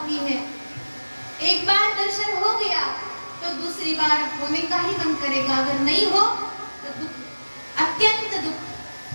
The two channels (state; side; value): inverted; both; correlation -1.00